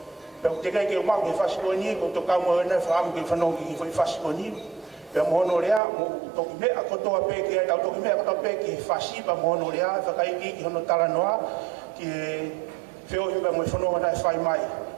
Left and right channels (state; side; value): drops out; left; at 5.8 s